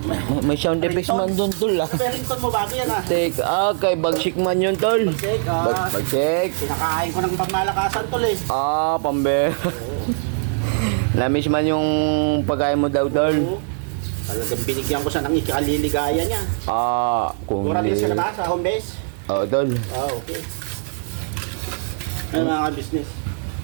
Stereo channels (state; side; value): silent; left; 65 dB below the other